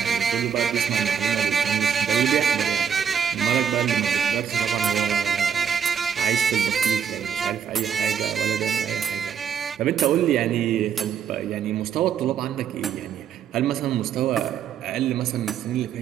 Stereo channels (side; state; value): left; quieter; 7.7 dB